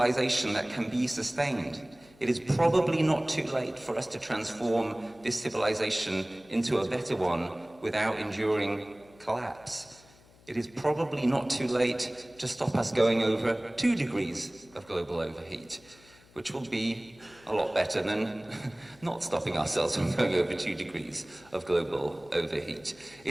that can be sustained. It is probably not too late for us to transform this civilization into a better one without enduring collapse. It is probably not too late to stop us going over 2 degrees of global overheat, which will be a lot better than not stopping ourselves from going over 2 degrees of global overheat.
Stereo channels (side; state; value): left; noise; hum, 27 dB below the sound